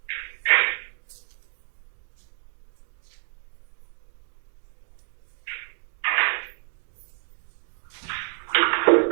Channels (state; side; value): silent; left; digital silence